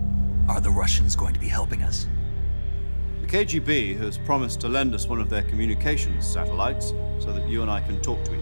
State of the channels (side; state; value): both; inverted; correlation -1.00